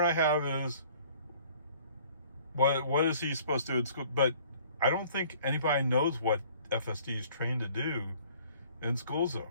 I have is what is he supposed to do in school? But I don't think anybody knows what FSD is trained to do in school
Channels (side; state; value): both; inverted; correlation -0.54